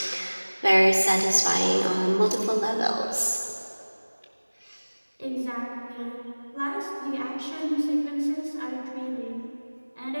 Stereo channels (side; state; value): both; inverted; correlation -1.00